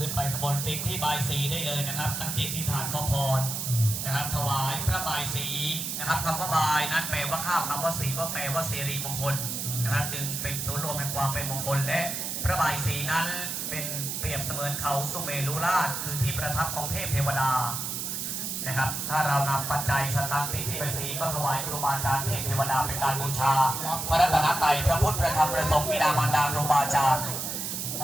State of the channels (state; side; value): noise; right; hiss, 3 dB below the sound